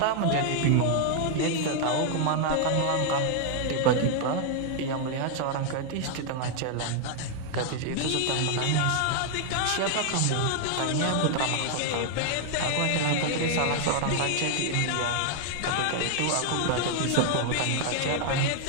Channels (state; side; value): different; both; correlation 0.00